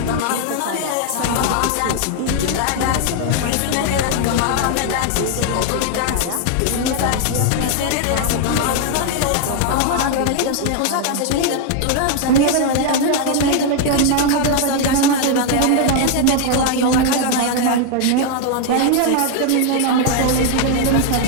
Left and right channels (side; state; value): both; different; correlation 0.00